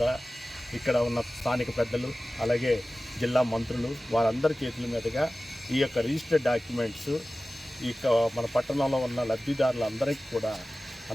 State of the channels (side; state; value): both; normal; correlation 0.96